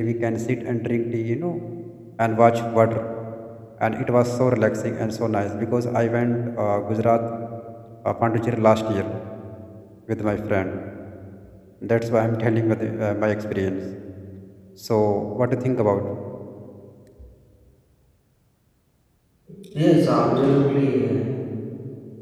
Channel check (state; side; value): identical; both; correlation 1.00